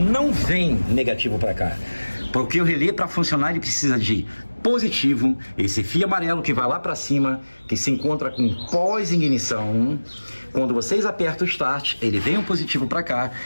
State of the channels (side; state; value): both; inverted; correlation -1.00